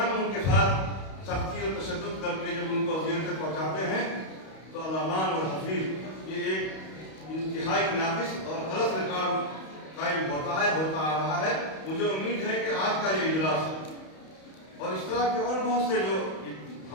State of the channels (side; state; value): right; late; 31 ms